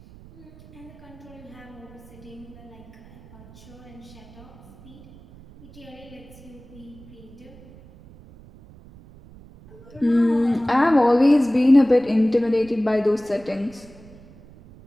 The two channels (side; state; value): right; noise; rumble, 21 dB below the sound